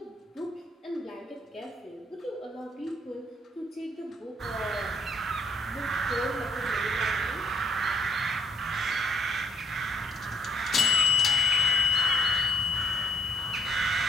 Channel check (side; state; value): both; normal; correlation 0.67